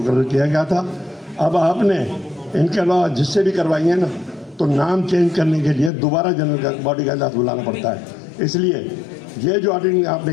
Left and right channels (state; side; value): drops out; right; at 5.9 s